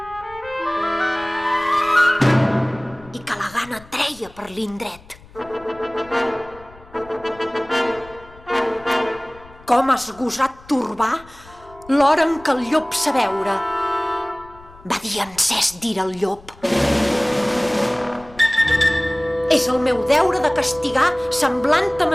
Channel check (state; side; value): noise; left; rumble, 23 dB below the sound